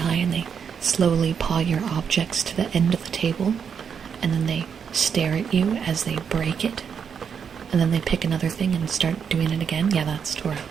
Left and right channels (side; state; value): left; quieter; 7.0 dB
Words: and they slowly paw your objects to the end of the table, and then they stare at you as they break it. And then they pick another thing and start doing it again. Yeah, that's Tora.